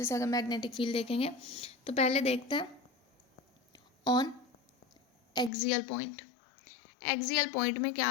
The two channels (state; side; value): drops out; right; at 5.5 s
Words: से अगर मैग्नेटिक फील्ड देखेंगे तो पहले देखते हैं on axial point. Axial point में क्या